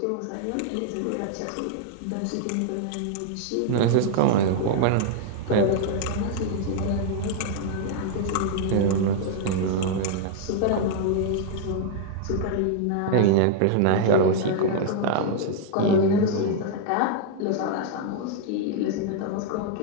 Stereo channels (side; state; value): both; different; correlation 0.00